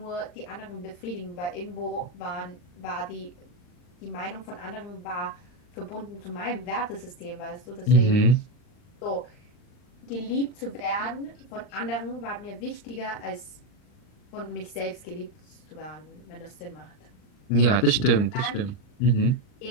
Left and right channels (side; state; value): right; late; 40 ms